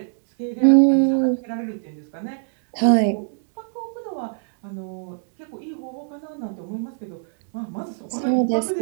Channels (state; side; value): silent; left; 63 dB below the other